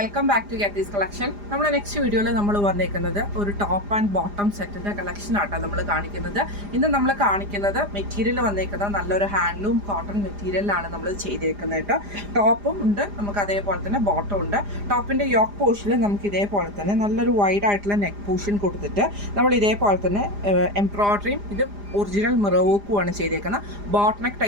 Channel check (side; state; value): left; late; 4.9 ms